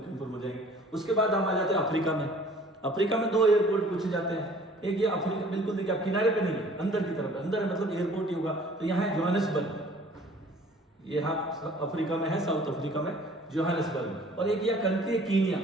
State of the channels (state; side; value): normal; both; correlation 0.52